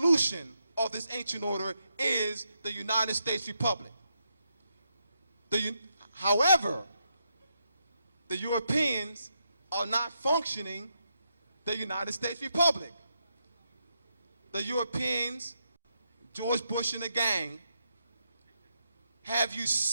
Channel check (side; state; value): both; inverted; correlation -0.81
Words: of this ancient order is the United States Republic. However, the Europeans are not functioning the United States Republic. The Europeans, George Bush and the gang, have